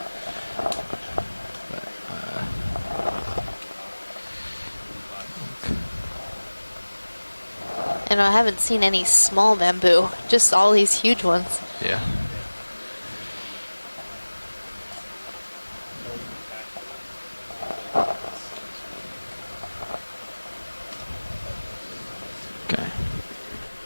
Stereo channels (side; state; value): both; inverted; correlation -1.00